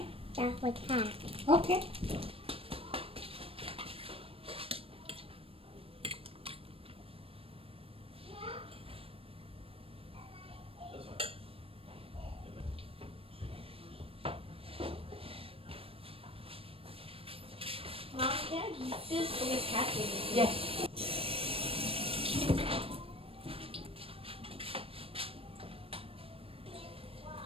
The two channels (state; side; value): late; left; 0.27 ms